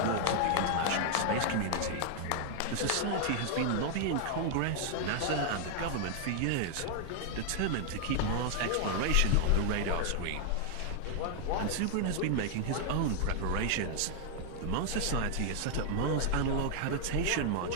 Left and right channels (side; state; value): both; different; correlation 0.00